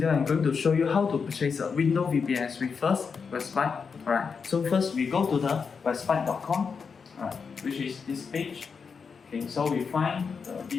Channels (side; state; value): right; quieter; 5.7 dB